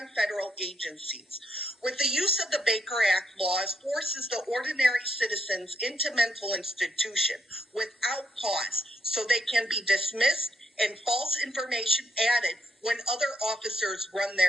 federal agencies. With the use of the Baker Act, laws forces the ordinary citizens into mental institution without cause, so they can be dismissed and false information added when other officers run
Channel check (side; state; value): both; normal; correlation 0.76